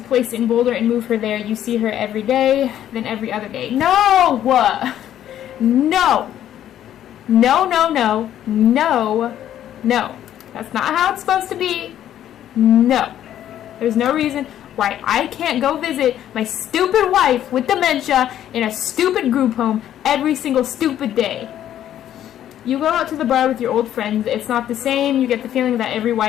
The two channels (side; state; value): right; quieter; 11.3 dB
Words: place in Boulder and move her there. You see her every day, then every other day. No! No! No, no, no. No. No. That's not how it's supposed to be. No. There's no reason. why I can't go visit my stupid wife with dementia in a stupid group home every single stupid day. You go out to the bar with your old friends. It's not the same. You get the feeling that every